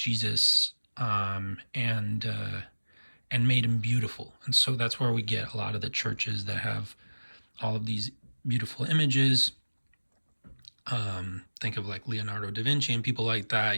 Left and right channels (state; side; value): inverted; both; correlation -1.00